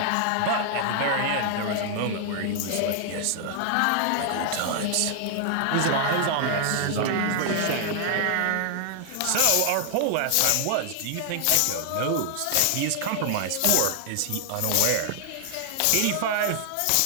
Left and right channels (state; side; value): different; both; correlation 0.00